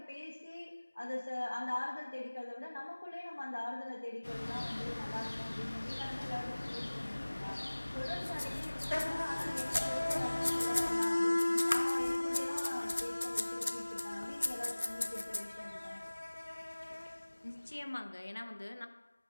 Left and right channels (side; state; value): both; inverted; correlation -1.00